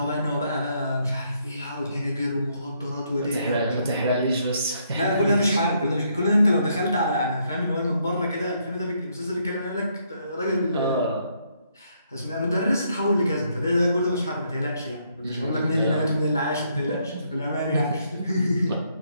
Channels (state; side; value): inverted; both; correlation -0.73